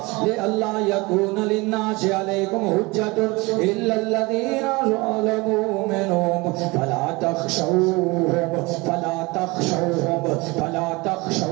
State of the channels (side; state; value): left; quieter; 24.3 dB